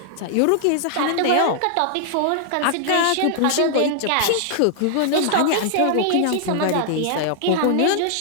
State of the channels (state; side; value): different; both; correlation -0.01